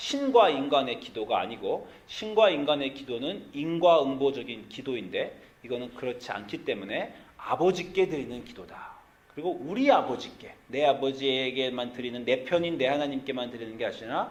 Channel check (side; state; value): both; identical; correlation 1.00